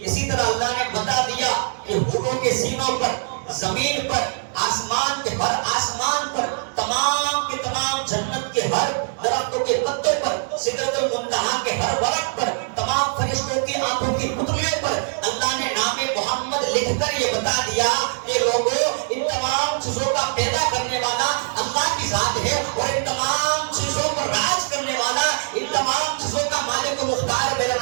اسی طرح اللہ نے بتا دیا کہ حوروں کے سینوں پر، زمین پر، آسمان کے ہر آسمان پر، تمام کے تمام جنت کے ہر درختوں کے پتوں پر، سدرۃ المنتہا کے ہر ورق پر، تمام فرشتوں کی آنکھوں کی پتلیوں پر اللہ نے نام محمد لکھ کر یہ بتا دیا کہ لوگوں ان تمام چیزوں کا پیدا کرنے والا اللہ کی ذات ہے اور ان تمام چیزوں پر راج کرنے والا، ان تمام چیزوں کا مالک و مختار میرا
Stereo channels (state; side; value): silent; left; digital silence